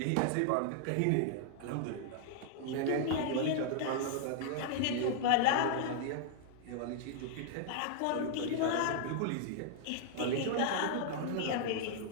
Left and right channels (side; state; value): both; different; correlation -0.01